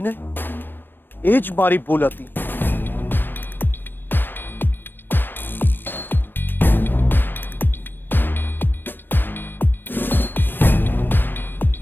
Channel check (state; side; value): late; right; 0.095 ms